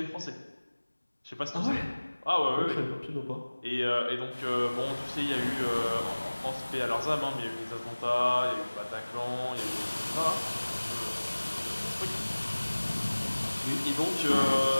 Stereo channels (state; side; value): inverted; both; correlation -1.00